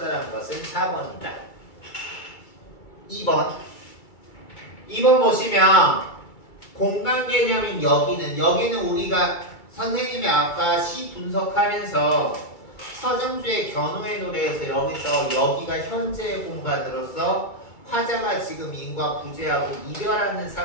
것은 4번이다. 2번 보시면 공간 개념인 여기는 우리가 선생님이 아까 시 분석하면서 서정주의 견우의 노래에서 여기가 현재의 공간으로서 화자가 지금 인과 부재하고 이별하는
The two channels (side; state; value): right; late; 2.3 ms